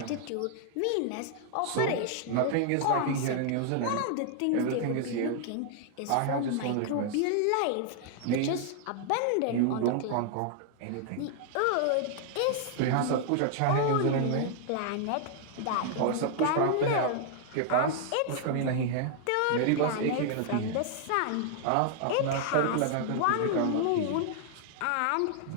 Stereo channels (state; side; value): different; both; correlation -0.01